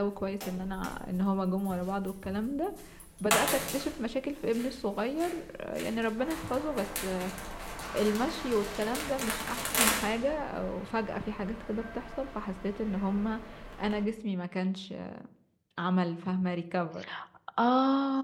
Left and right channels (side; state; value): both; identical; correlation 1.00